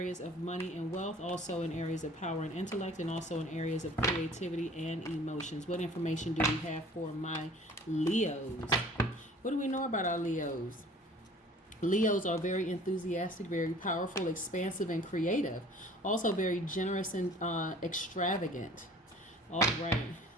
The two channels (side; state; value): both; normal; correlation 0.49